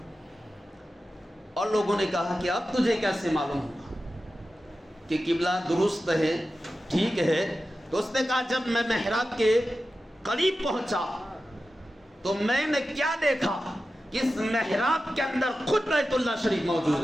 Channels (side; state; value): both; normal; correlation 0.93